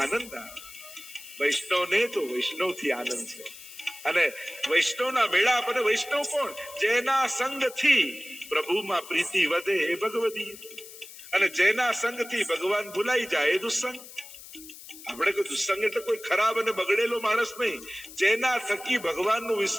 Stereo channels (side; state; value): left; noise; hiss, 16 dB below the sound